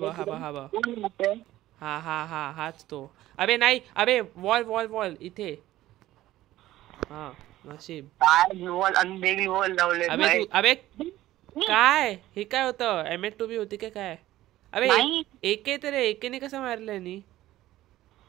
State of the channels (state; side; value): quieter; left; 15.1 dB